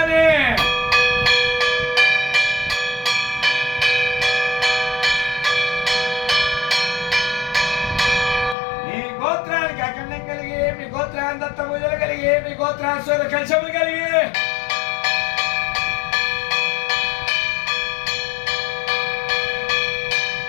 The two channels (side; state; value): right; drops out; at 8.6 s